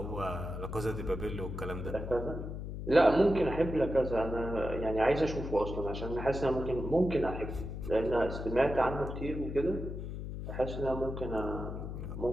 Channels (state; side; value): noise; left; hum, 6 dB below the sound